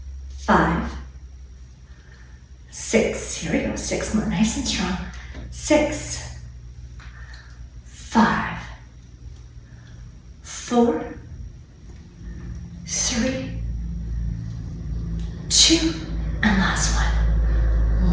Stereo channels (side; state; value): both; identical; correlation 1.00